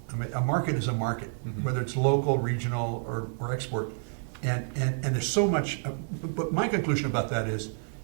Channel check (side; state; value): left; silent; 58 dB below the other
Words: I mean, a market is a market, whether it's local, regional, or export. And there's so much, but my conclusion about that is,